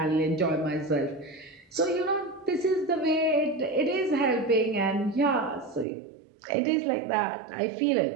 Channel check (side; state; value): left; drops out; at 5.9 s